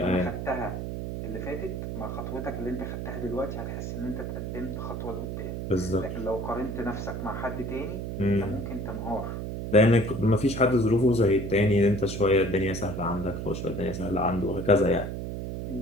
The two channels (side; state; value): right; noise; hum, 5 dB below the sound